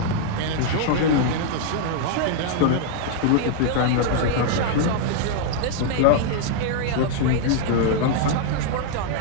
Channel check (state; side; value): different; both; correlation 0.00